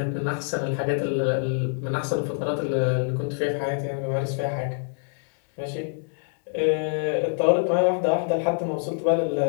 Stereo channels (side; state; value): right; silent; digital silence